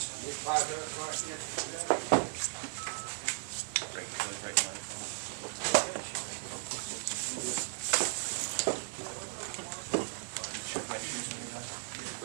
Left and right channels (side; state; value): left; silent; digital silence